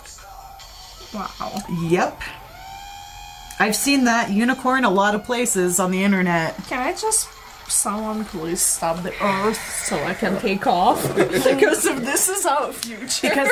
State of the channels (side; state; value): both; identical; correlation 1.00